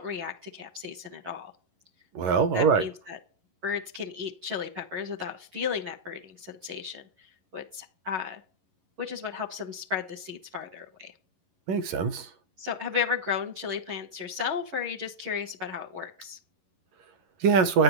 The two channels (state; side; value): late; left; 11 ms